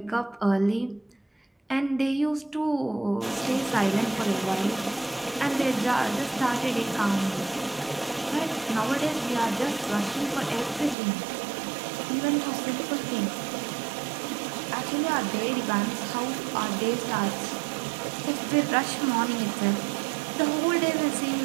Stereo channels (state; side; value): drops out; left; at 11.0 s